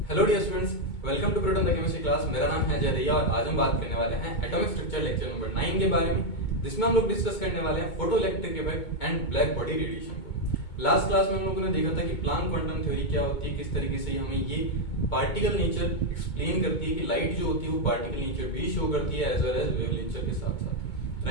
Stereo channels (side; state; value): right; late; 2.2 ms